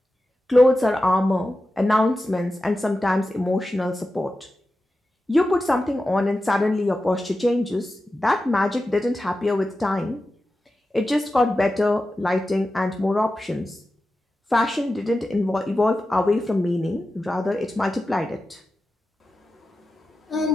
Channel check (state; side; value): normal; both; correlation 0.92